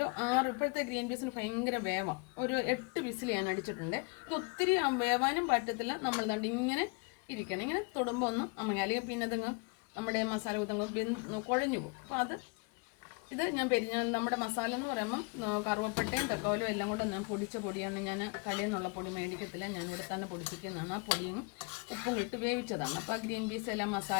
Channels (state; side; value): quieter; right; 31.8 dB